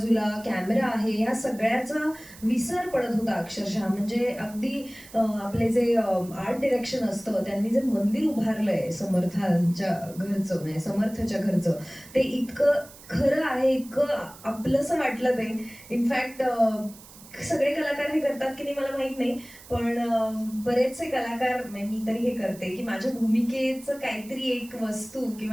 कॅमेरा आहे, ह्या सगळ्याचा विसर पडत होता अक्षरशः. म्हणजे अगदी आपले जे आर्ट डिरेक्शन असतं, त्यांनी जे मंदिर उभारलंय समर्थांच्या घरचं, म्हणजे समर्थच्या घरचं, ते इतकं खरं आहे, इतकं आपलंसं वाटलं ते. इनफॅक्ट सगळे कलाकार हे करतात की नाही मला माहित नाही, पण बरेचसे कलाकार, मी तरी हे करते की माझ्या भूमिकेचं काहीतरी एक वस्तू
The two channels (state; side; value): noise; right; hiss, 20 dB below the sound